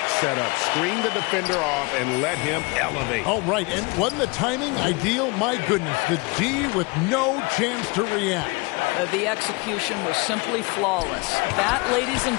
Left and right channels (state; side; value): quieter; right; 28.1 dB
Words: setup. Screen the defender off and let him elevate. Oh, right. And wasn't the timing ideal? My goodness, the D with no chance to react. The execution was simply flawless. That, ladies and